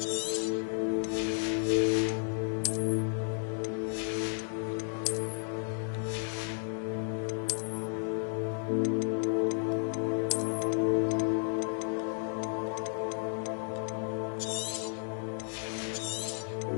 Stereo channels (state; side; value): silent; right; 56 dB below the other